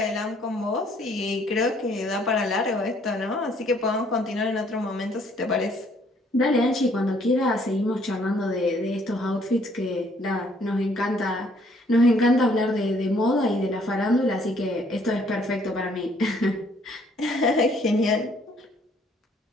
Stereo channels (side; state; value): both; normal; correlation 0.64